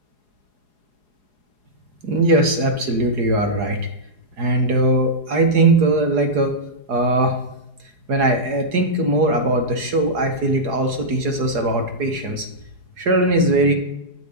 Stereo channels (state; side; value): late; left; 4.8 ms